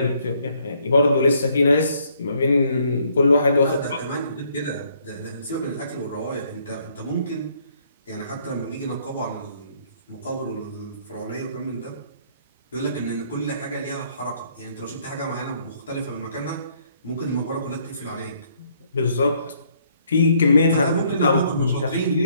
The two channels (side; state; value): both; inverted; correlation -0.67